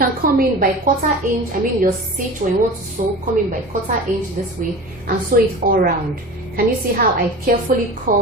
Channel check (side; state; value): both; normal; correlation 0.34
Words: come in by 1/4 inch, your stitch when you want to sew, come in by 1/4 inch this way and sew it all around. Can you see how I carefully